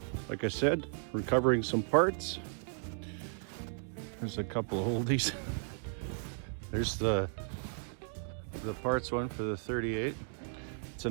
Like I said, recovering some parts. There's a couple of oldies. There's the parts one for the 38. It's a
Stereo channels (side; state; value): left; silent; 54 dB below the other